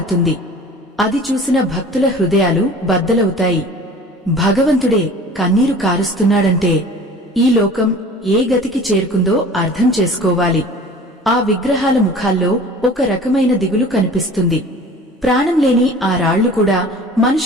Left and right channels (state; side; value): normal; both; correlation 0.44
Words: అది చూసిన భక్తుల హృదయాలు బద్దలవుతాయి. భగవంతుడే కన్నీరు కారుస్తున్నాడంటే ఈ లోకం ఏ గతికి చేరుకుందో అర్థం చేసుకోవాలి. ఆ విగ్రహాల ముఖాల్లో ఒక రకమైన దిగులు కనిపిస్తుంది. ప్రాణం లేని ఆ రాళ్లు కూడా